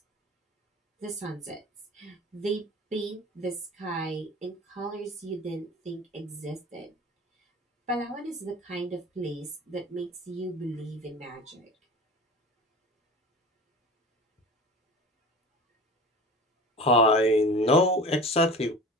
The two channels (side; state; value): both; normal; correlation 0.37